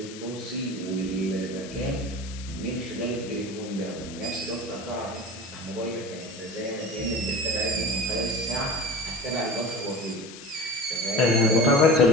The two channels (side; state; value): left; noise; hiss, 15 dB below the sound